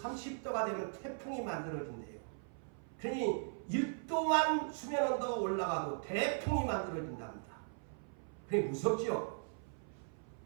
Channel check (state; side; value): silent; left; 52 dB below the other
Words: 30도가 되면 태풍이 만들어진대요. 그러니 1도만 수면 온도가 올라가도 태풍이 만들어진답니다. 그게 무섭지요?